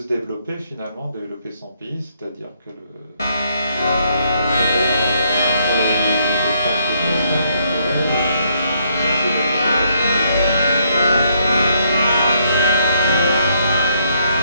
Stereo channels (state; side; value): inverted; both; correlation -0.72